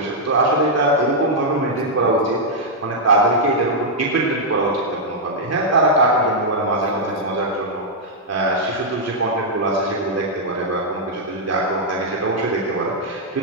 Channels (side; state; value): both; normal; correlation -0.05